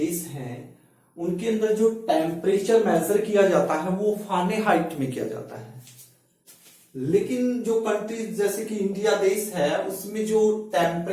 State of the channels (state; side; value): identical; both; correlation 1.00